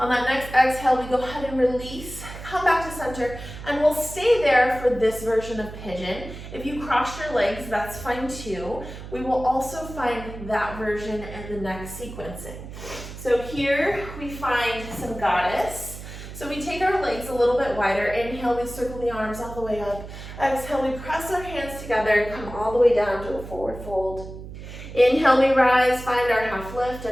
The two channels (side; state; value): right; noise; hum, 12 dB below the sound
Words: that next exhale, we go ahead and release, come back to center, and we'll stay there for this version of pigeon. If you cross your legs, that's fine too. We will also find that version in the next sequencing. So here we find some goddess. So we take our legs a little bit wider. Inhale, we circle the arms all the way up. Exhale, we press our hands together and come all the way down to a forward fold. Inhale, we rise, find our half lift,